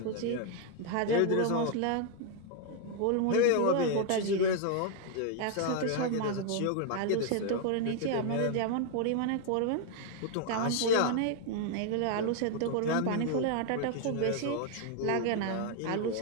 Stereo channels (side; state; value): both; different; correlation 0.00